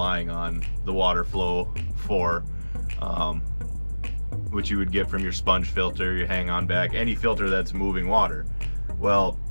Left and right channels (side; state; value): both; inverted; correlation -1.00